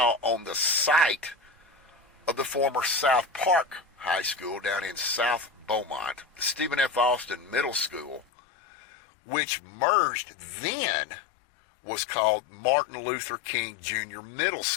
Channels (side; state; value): right; drops out; at 8.2 s